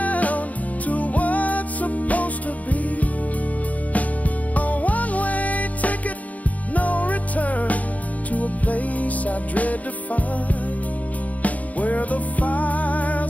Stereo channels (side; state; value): right; late; 0.072 ms